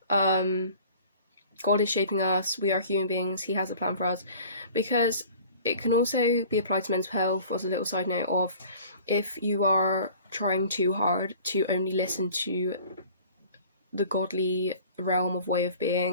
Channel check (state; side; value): inverted; both; correlation -0.47